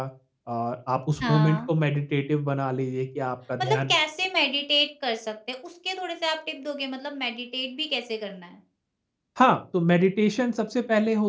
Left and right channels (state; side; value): identical; both; correlation 1.00